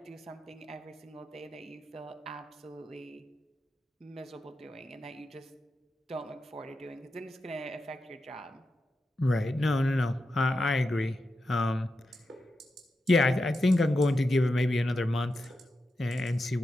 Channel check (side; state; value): both; normal; correlation 0.89